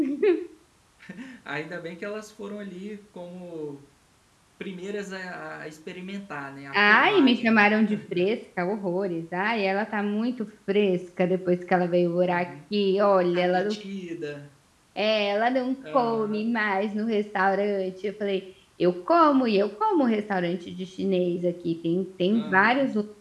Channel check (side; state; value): both; identical; correlation 1.00